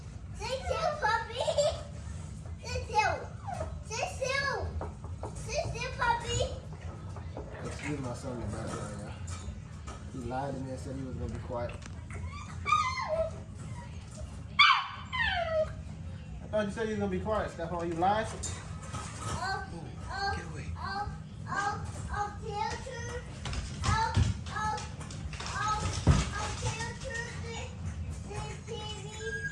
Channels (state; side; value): identical; both; correlation 1.00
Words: Sit still, puppy. Sit still. Sit still. Sit still, puppy. Excuse my son in the background, y'all. He lied to me and said he was going to be quiet. I thought you said you was going to be quiet, Stephon. You lied? Oh,